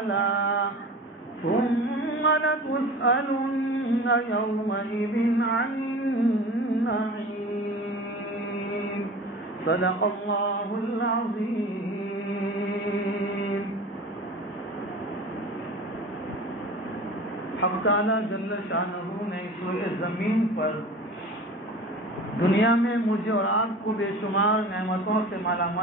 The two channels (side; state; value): both; normal; correlation 0.37